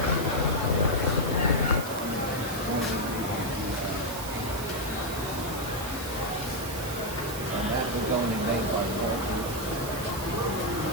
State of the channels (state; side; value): noise; right; hiss, 10 dB below the sound